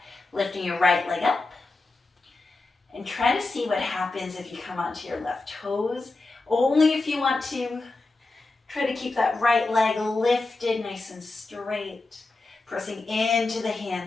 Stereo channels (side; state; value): right; quieter; 3.4 dB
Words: Lifting your right leg up. And try to see what happens if you come onto your left toes. Only if you want to. Try to keep that right leg lifted nice and straight. Pressing into the